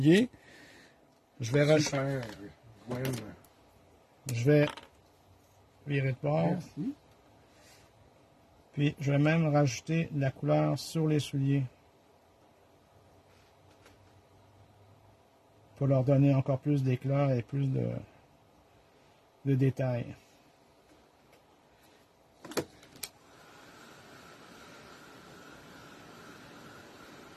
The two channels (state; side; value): identical; both; correlation 1.00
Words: je vais rajouter. Je vais virer de bord. Merci. Puis je vais même rajouter de la couleur sur les souliers. Pour leur donner encore plus d'éclat et plus de détails.